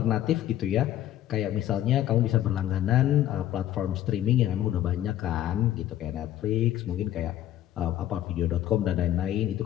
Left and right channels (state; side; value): quieter; right; 12.5 dB